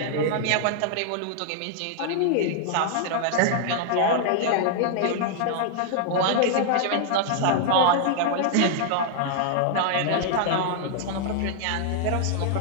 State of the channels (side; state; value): both; different; correlation -0.01